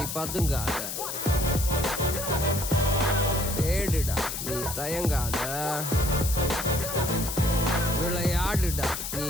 பதுங்காத. தேடுடா நீ தயங்காத. விளையாடுடா நீ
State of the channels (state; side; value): noise; left; hiss, 5 dB below the sound